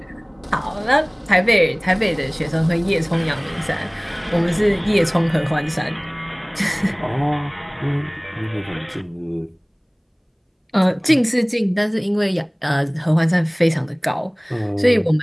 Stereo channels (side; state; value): both; identical; correlation 1.00